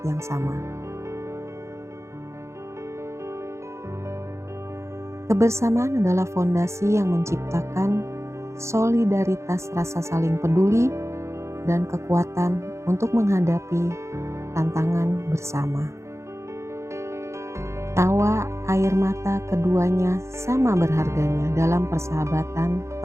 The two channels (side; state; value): left; late; 0.14 ms